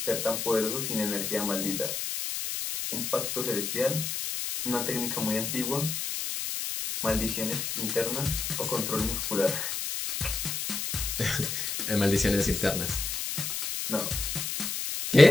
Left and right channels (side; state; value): left; noise; hiss, 3 dB below the sound